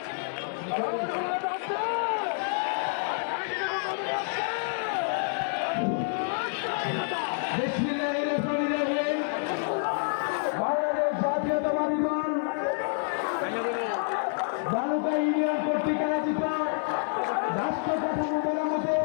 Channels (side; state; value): right; silent; 59 dB below the other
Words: বাংলাদেশ জাতীয়তাবাদী দল ভালুকা ইউনিয়ন কর্তৃক আয়োজিত রাষ্ট্র কাঠামো মেরামতে